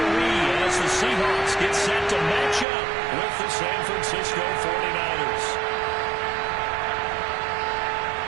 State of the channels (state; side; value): drops out; left; at 2.7 s